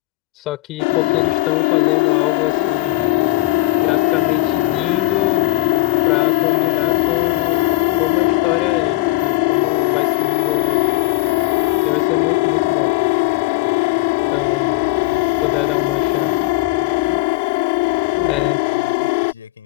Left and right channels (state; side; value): quieter; right; 19.4 dB